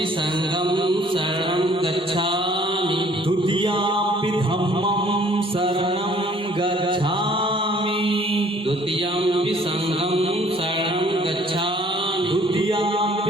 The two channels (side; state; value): both; normal; correlation 0.58